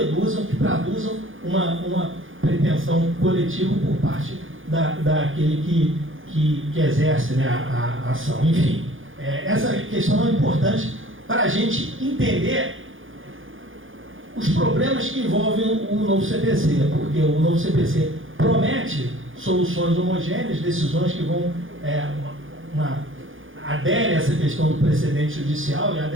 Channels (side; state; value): left; late; 0.58 ms